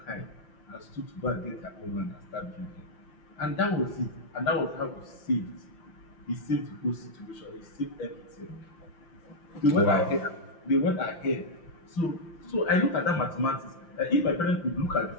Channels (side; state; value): right; late; 5.8 ms